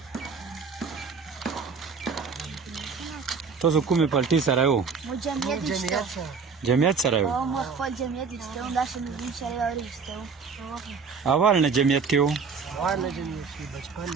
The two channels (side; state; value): left; quieter; 5.4 dB